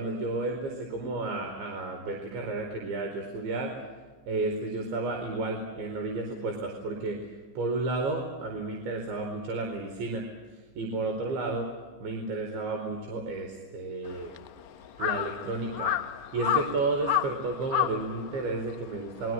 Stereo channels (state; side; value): late; left; 15 ms